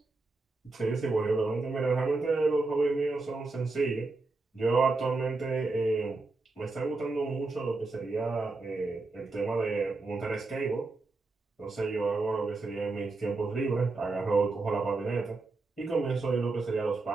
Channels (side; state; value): left; quieter; 3.5 dB